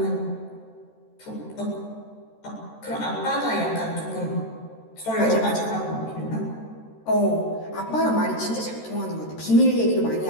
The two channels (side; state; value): right; late; 13 ms